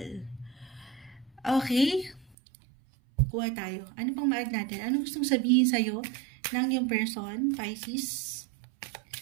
Okay? Kuha tayo. Ano pang ma-add natin? Ano gustong sabihin sa'yo ng yung person, Pisces?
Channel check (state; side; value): drops out; left; at 2.4 s